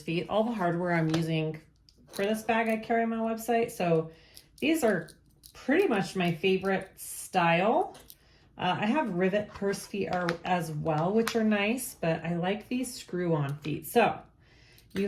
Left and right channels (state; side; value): identical; both; correlation 1.00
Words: All the hardware I'm using for this bag I carry on my website, so these are pretty much my favorite style. I have rivet purse feet as well, which are nice, but I like these screw-on feet. So you